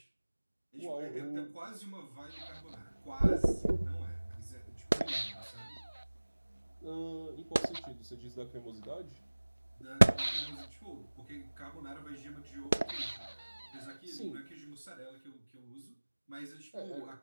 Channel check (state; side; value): inverted; both; correlation -1.00